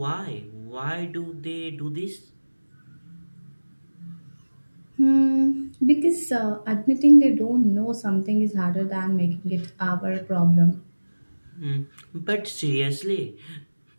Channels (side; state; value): both; inverted; correlation -1.00